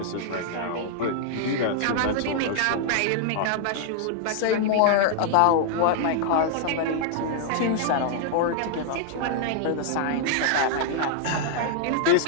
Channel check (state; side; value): different; both; correlation -0.01